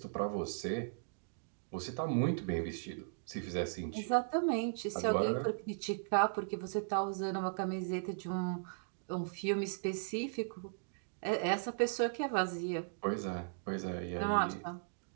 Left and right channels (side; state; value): left; silent; digital silence